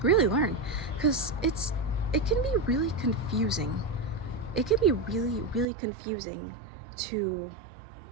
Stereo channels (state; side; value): drops out; left; at 5.7 s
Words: really learn, because it can be really confusing. It can be really confusing to